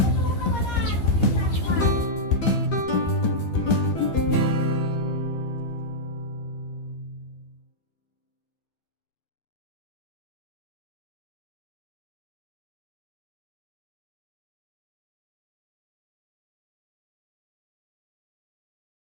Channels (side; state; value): right; late; 12 ms